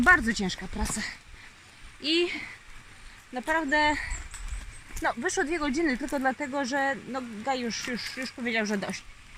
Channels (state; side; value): identical; both; correlation 1.00